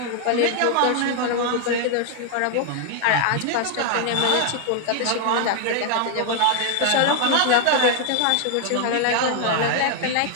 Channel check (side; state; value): both; different; correlation 0.00